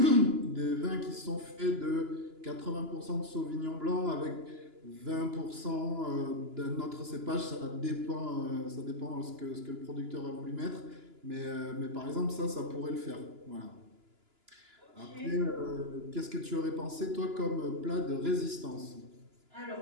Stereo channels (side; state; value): left; late; 2.9 ms